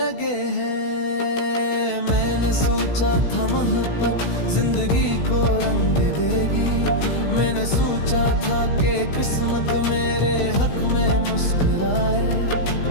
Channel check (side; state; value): right; late; 16 ms